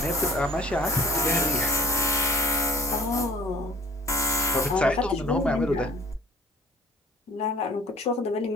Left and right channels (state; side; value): normal; both; correlation 0.51